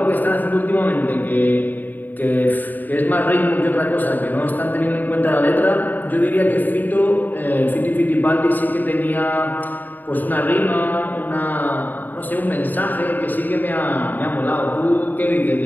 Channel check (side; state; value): right; late; 0.087 ms